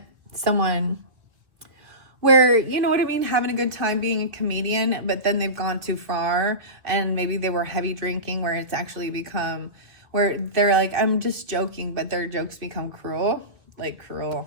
someone where, you know what I mean, having a good time being a comedian, but then they've gone too far and maybe they were heavy drinking, where it's actually become, where they're like, I'm just joking, but their jokes become cruel, like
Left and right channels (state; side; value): late; left; 2.2 ms